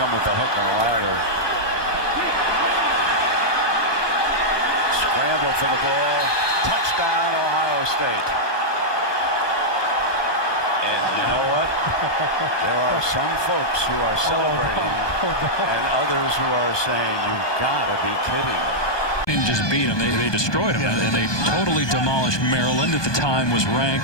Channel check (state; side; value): late; right; 1.2 ms